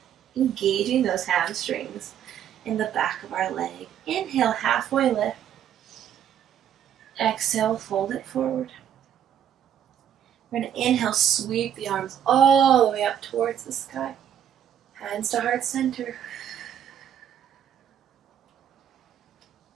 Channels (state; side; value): quieter; left; 9.7 dB